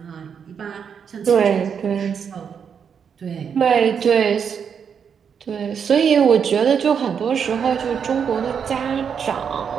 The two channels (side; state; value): left; quieter; 7.1 dB